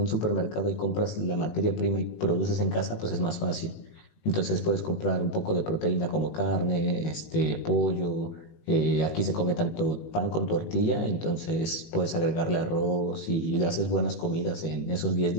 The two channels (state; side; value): late; right; 18 ms